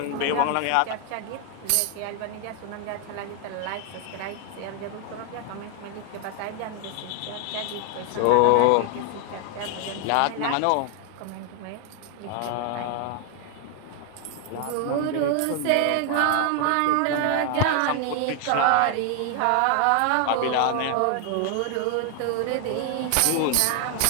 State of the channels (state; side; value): different; both; correlation 0.00